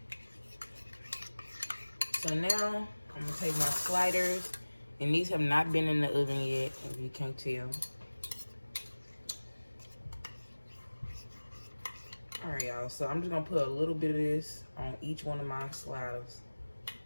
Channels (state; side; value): inverted; both; correlation -1.00